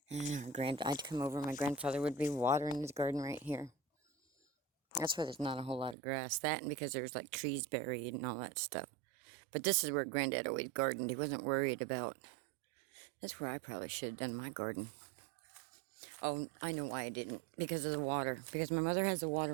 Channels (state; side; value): drops out; left; at 6.0 s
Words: And I'd come over, my grandfather would be watering his garden right here. That's why there's not a whole lot of grass. That and because there's like trees buried and all that stuff. But this is where Granddad always gardened. He wasn't worried about... That's where I probably should have done my garden. Oh, I know why I didn't. Because of the water. Because my mother has the